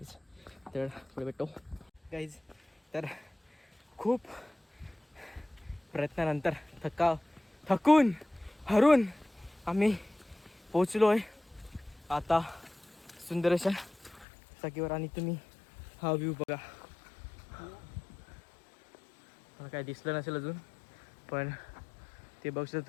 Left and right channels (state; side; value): drops out; right; at 14.2 s